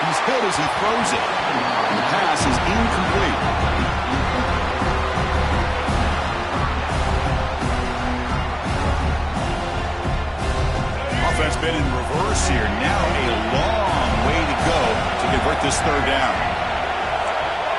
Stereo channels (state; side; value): identical; both; correlation 1.00